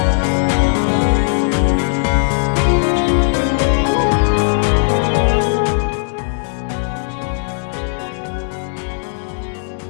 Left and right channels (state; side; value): silent; right; digital silence